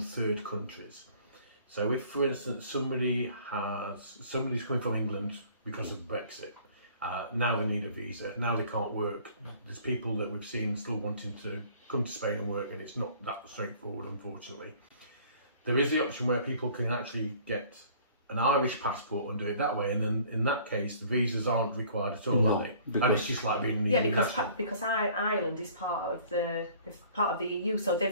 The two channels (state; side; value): inverted; both; correlation -0.53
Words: third countries. So if, for instance, somebody's coming from England because of Brexit, now they need a visa, now they can't work. There's people that we've seen still wanting to come to Spain and work, and it's not that straightforward, unfortunately. There is the option where people can actually get an Irish passport and do it that way, and then in that case the visas aren't required at all, are they? And it's just like being because Ireland is part of the EU, so